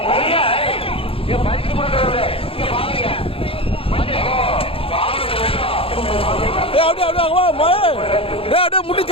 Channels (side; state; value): right; late; 0.27 ms